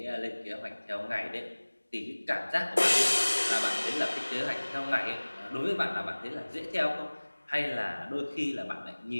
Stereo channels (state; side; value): inverted; both; correlation -1.00